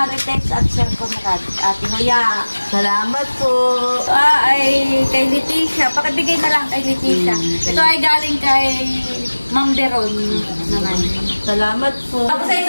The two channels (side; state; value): both; inverted; correlation -1.00